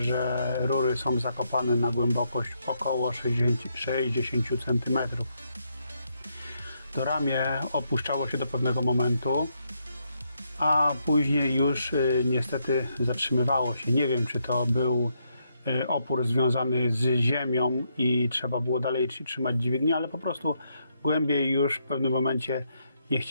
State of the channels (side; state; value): both; inverted; correlation -0.78